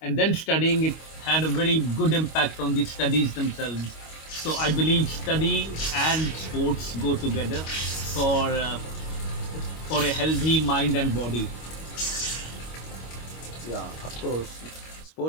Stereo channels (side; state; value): right; late; 25 ms